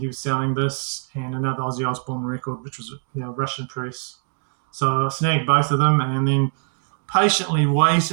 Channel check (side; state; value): left; silent; 64 dB below the other